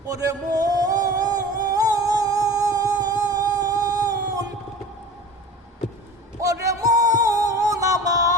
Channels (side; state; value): both; normal; correlation 0.38